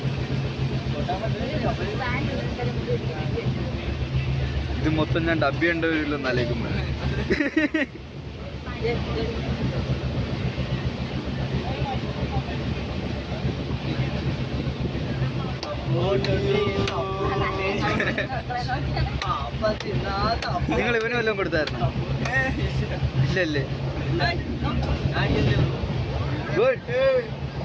ഇത് മൊത്തം ഞാൻ ഡബ്ബി ഉണ്ടോ നലേക്കുമ്പോ നിങ്ങൾ ഇവന് വല്ലതും കൊടുത്തായിരുന്നു? ഇല്ലല്ലേ? ഗുഡ്.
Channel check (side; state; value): both; identical; correlation 1.00